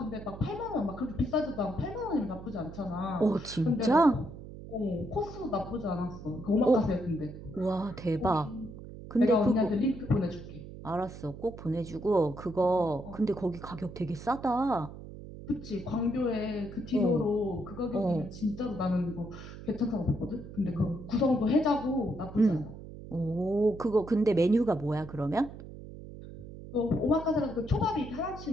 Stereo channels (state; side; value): noise; right; hum, 13 dB below the sound